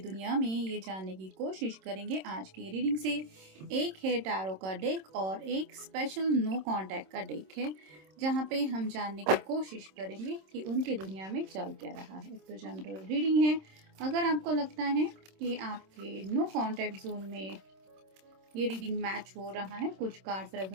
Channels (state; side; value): late; left; 26 ms